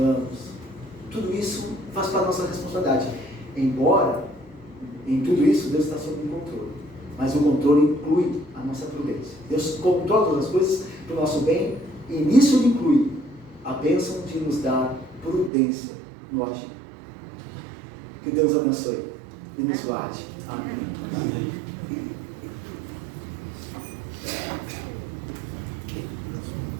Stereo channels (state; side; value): drops out; left; at 15.5 s